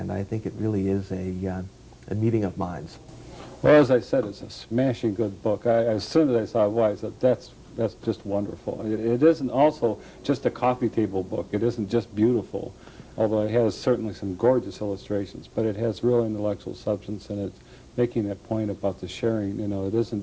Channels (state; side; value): identical; both; correlation 1.00